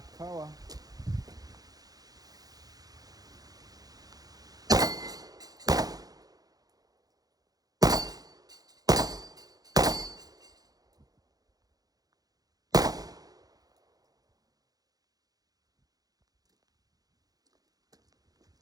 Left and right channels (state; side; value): late; left; 0.18 ms